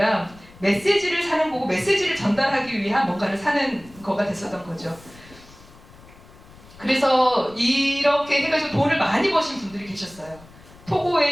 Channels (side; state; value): left; noise; rumble, 23 dB below the sound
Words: 메시지를 사는 거고 메시지를 전달하기 위한 뭔가를 사는 거가 됐었던 거죠. 그래서 이렇게 해가지고 돈을 많이 버신 분들이 계셨어요.